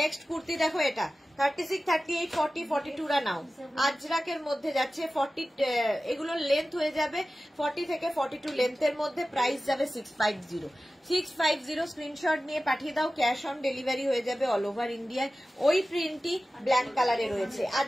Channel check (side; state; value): both; normal; correlation 0.95